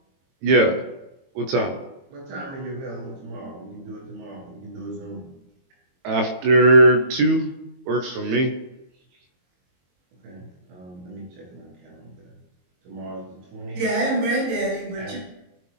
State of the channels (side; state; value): left; late; 22 ms